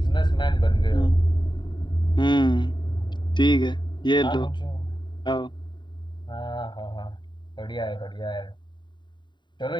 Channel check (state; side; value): late; right; 0.22 ms